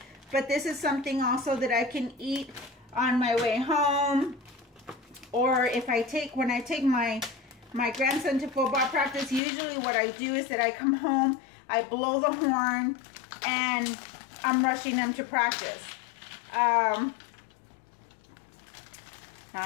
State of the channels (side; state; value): right; drops out; at 9.4 s